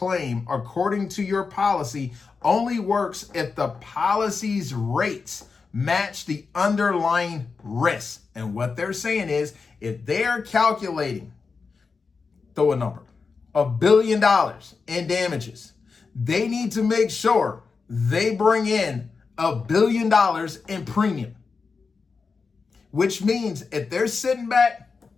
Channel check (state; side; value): quieter; right; 4.8 dB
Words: according to your policy only works if the policy's rates match the underlying risk. And what they're saying is if they're calculating, throw a number, $1 billion in damages, they need to make sure they bring in $1 billion in premium. Which means if they're sitting back